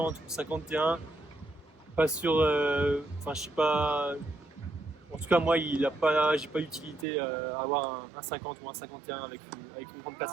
ou 51, pas sûr. Enfin, je sais pas. En tout cas, moi, j'ai pas d'utilité à avoir un 50 ou un 51 avec une grande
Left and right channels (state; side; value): drops out; left; at 7.1 s